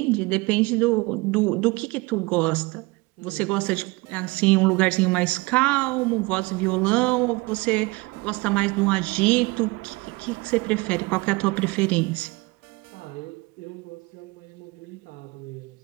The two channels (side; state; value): left; quieter; 24.2 dB